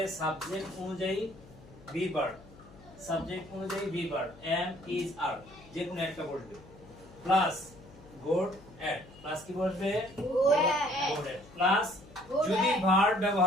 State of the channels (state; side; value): noise; left; hum, 21 dB below the sound